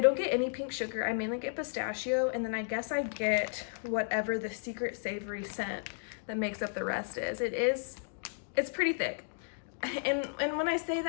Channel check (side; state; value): right; silent; digital silence